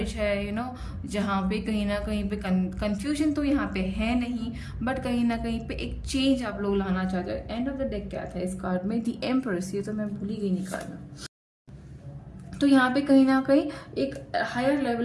है, जहाँ पे कहीं ना कहीं पे कंफ्यूजन तो यहाँ पे है नहीं, बट कहीं ना कहीं पे एक चेंज आप लोग लाना चाहते हो। एंड ऑफ द डेक क्या था इस कार्ड में? द एम्प्रेस, ये तो मैं भूल ही गई निकालना। तो यहाँ पे कहीं ना कहीं एक हायर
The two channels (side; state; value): both; identical; correlation 1.00